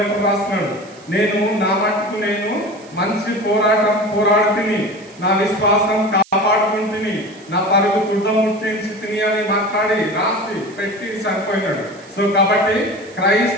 రాస్తున్నాడు, నేను నా మట్టుకు నేను మంచి పోరాటం పోరాడుతుని, నా విశ్వాసం కాపాడుకుంటుని, నా పరుగు తుడముట్టించి తిని అని మాట్లాడి రాసి పెట్టి చనిపోయినాడు. సో కాబట్టి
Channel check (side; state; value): right; noise; hiss, 25 dB below the sound